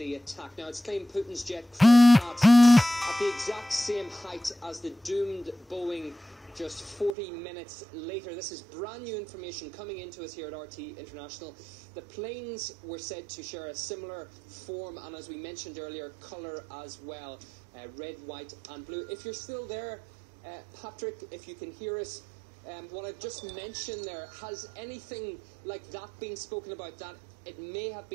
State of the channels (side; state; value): left; drops out; at 7.2 s